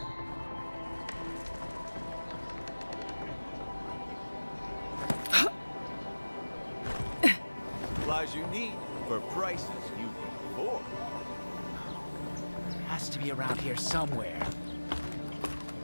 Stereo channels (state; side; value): inverted; both; correlation -1.00